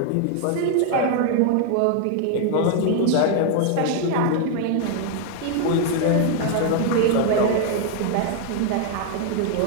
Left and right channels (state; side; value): different; both; correlation 0.00